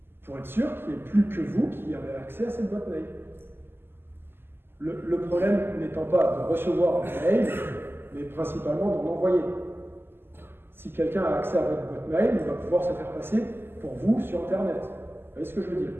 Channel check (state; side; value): late; left; 0.11 ms